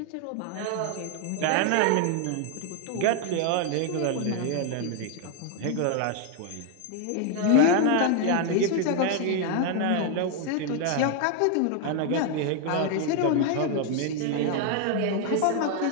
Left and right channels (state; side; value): different; both; correlation 0.00